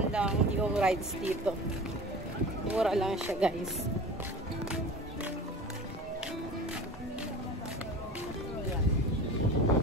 lang yung rides dito. Mura lang siya, guys.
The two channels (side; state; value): both; normal; correlation 0.37